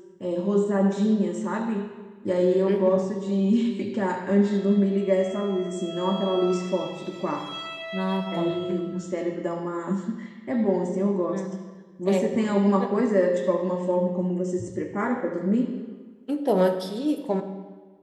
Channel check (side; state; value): both; identical; correlation 1.00